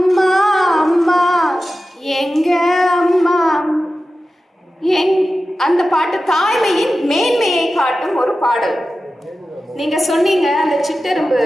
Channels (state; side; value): normal; both; correlation 0.94